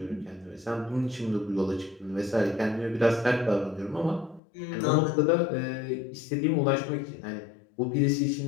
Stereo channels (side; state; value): right; drops out; at 4.4 s